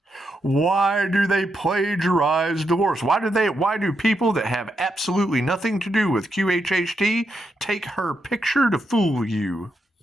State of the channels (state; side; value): normal; both; correlation 0.82